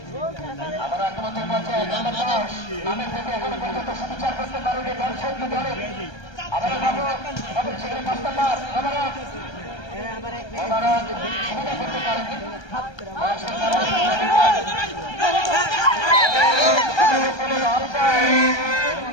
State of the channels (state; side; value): late; right; 1.3 ms